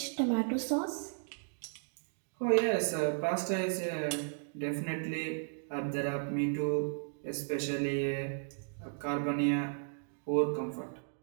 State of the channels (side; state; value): left; silent; digital silence